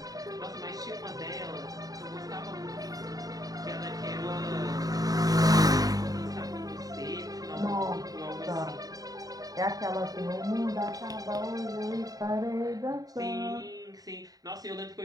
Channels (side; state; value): left; late; 0.18 ms